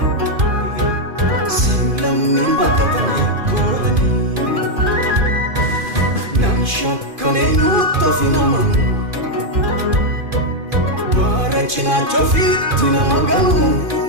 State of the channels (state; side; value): late; left; 2.5 ms